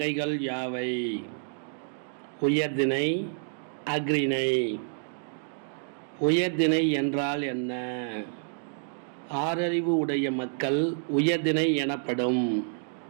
யாவை? உயர்திணை, அஃறிணை. உயர்திணை என்றால் என்ன? ஆறறிவு உடைய மக்கள் உயர்திணை எனப்படும்.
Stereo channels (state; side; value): silent; left; digital silence